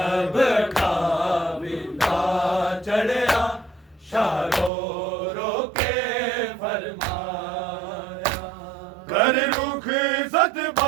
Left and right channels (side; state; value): left; drops out; at 4.7 s